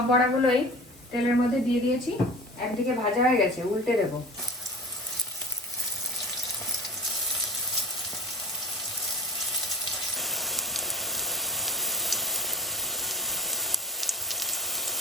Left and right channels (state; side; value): normal; both; correlation 0.40